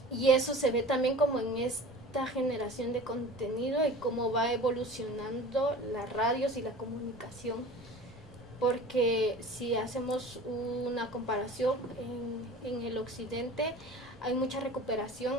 Y eso se ve también como en esta generación de contenido y cómo va evolucionando las radios y la comunicación. Porque si hacemos una comparación en el occidente, hay mucha recuperación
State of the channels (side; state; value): both; normal; correlation 0.40